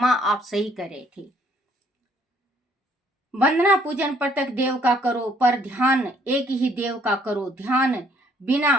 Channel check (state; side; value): normal; both; correlation 0.64